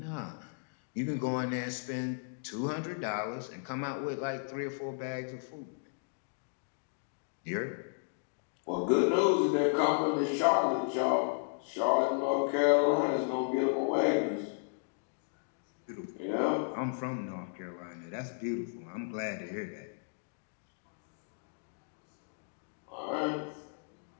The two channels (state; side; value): silent; right; digital silence